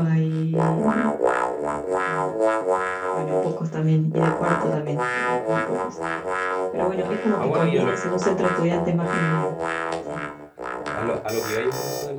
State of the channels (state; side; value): identical; both; correlation 1.00